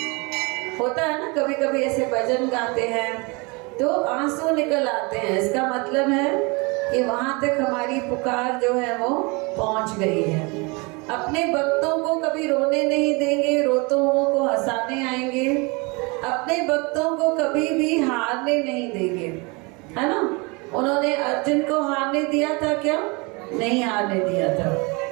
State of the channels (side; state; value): left; quieter; 28.2 dB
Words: होता है ना, कभी कभी ऐसे भजन गाते हैं तो आंसू निकल आते हैं, इसका मतलब है कि वहां तक हमारी पुकार जो है वो पहुंच गई है। अपने भक्तों को कभी रोने नहीं देंगे, रोतों को हंसाने आएंगे। अपने भक्तों को कभी भी हारने नहीं देंगे, है ना? उन्होंने अर्जुन को हारने दिया था क्या? नहीं हारने दिया था।